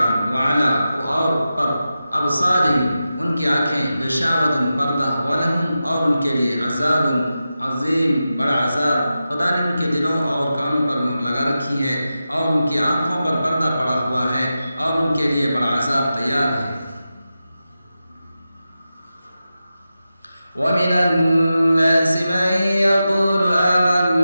وعلی اور پر ابصارہم ان کی آنکھیں غشاوۃ پردہ ولہم اور ان کے لیے عذاب عظیم بڑا عذاب. خدا نے ان کے دلوں اور کانوں پر مہر لگا رکھی ہے اور ان کی آنکھوں پر پردہ پڑا ہوا ہے اور ان کے لیے بڑا عذاب تیار ہے. وَمِنَ النَّاسِ مَن يَقُولُ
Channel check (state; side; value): inverted; both; correlation -0.92